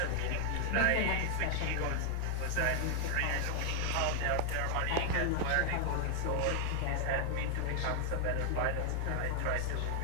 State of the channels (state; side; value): different; both; correlation 0.00